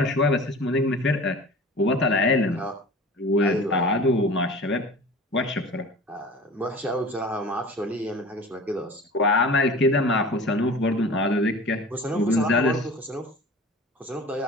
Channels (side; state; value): both; normal; correlation 0.39